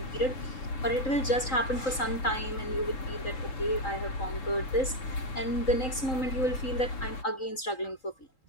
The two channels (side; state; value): right; late; 3.8 ms